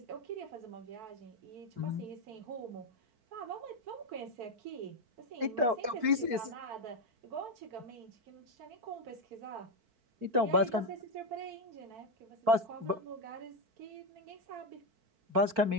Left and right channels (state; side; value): late; left; 4.5 ms